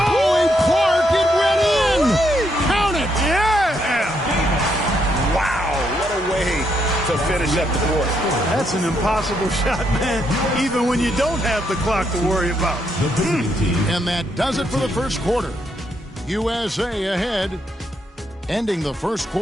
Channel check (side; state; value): both; normal; correlation 0.77